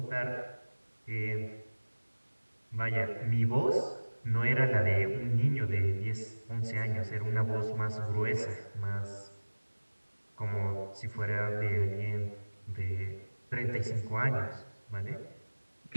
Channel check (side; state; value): both; inverted; correlation -1.00